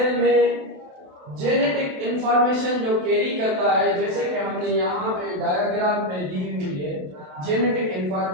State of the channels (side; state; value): left; late; 27 ms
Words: में जेनेटिक इंफॉर्मेशन जो कैरी करता है, जैसे कि हमने यहाँ पे डायग्राम में दी हुई है, genetic